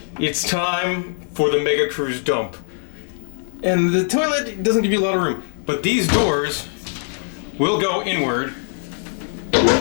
it's time for the mega cruise dump. And the toilet doesn't give you a lot of room, but these doors will go inward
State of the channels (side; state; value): right; silent; digital silence